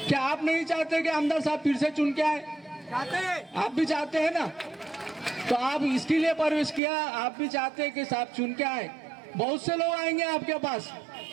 क्या आप नहीं चाहते कि आमदार साहब फिर से चुन के आए? चाहते हैं, आप भी चाहते हैं ना? तो आप इसके लिए प्रवेश किया, आप भी चाहते हैं कि साहब चुन के आए। बहुत से लोग आएंगे आपके पास,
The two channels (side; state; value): left; drops out; at 6.8 s